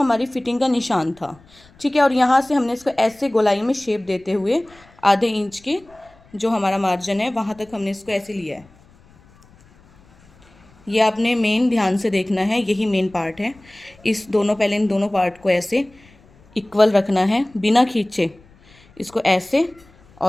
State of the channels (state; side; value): noise; left; rumble, 28 dB below the sound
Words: फिटिंग का निशान था, ठीक है। और यहाँ से हमने इसको ऐसे गोलाई में शेप देते हुए आधे इंच के जो हमारा मार्जिन है वहाँ तक हमने इसको ऐसे लिया है। ये आपने मेन ध्यान से देखना है, यही मेन पार्ट है। पहले इन दोनों पार्ट को ऐसे इक्वल रखना है बिना खींचे, इसको ऐसे